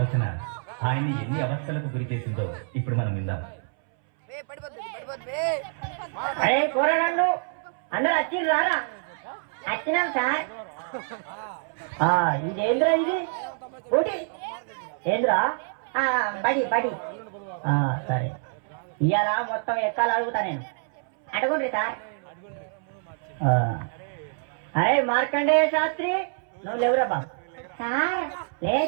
ఆయన్ని ఎన్ని అవస్థలకు గురి చేసిందో ఇప్పుడు మనం విందాం. అందరూ వచ్చింది రారా? వచ్చినాం సార్. ఇదేంద్రా ఇది ఊటి ఏంద్రా? బడి బడి సరే, ఇవాళ మొత్తం ఎక్కాలి అడుగుతా నేను. అడగండి సార్. అరే మార్కండేయ శాస్త్రి, నువ్వు లేవురా బాబు. సార్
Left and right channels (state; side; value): silent; left; 61 dB below the other